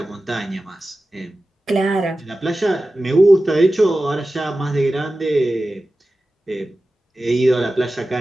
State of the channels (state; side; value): normal; both; correlation 0.95